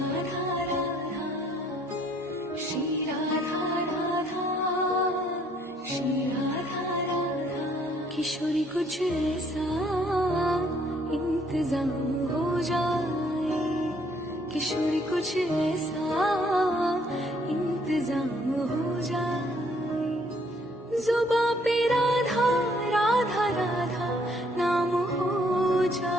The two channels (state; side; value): normal; both; correlation 0.65